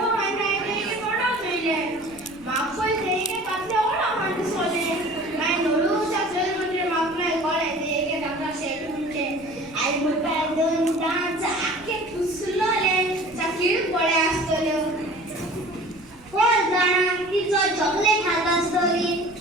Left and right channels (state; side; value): noise; right; rumble, 24 dB below the sound